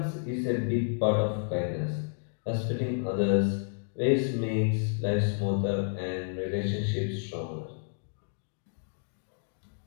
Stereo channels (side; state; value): right; silent; digital silence